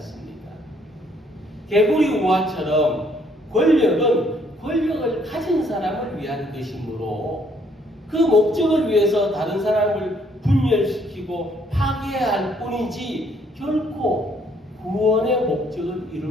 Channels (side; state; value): both; normal; correlation 0.66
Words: 개구리 우화처럼 권력은 권력을 가진 사람을 위한 것이므로 그 목적을 위해서 다른 사람을 분열시키고 파괴할 뿐이지 결코 구원의 목적을